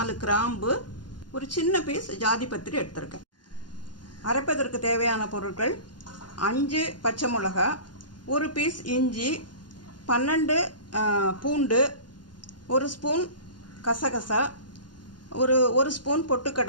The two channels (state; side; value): late; right; 0.71 ms